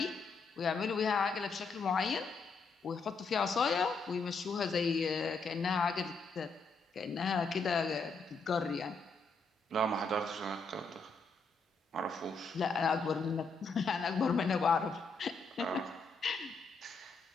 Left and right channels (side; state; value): right; quieter; 4.0 dB